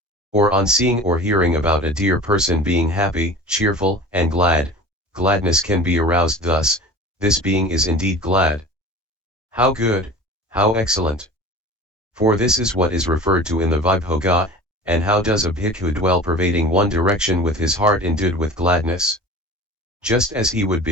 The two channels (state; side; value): normal; both; correlation 0.38